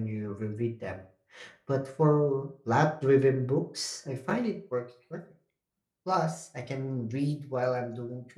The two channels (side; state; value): both; identical; correlation 1.00